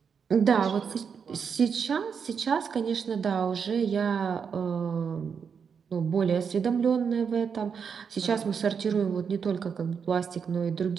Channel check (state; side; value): quieter; left; 6.5 dB